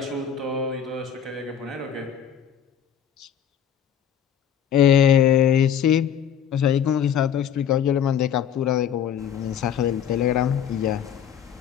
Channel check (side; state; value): right; quieter; 8.9 dB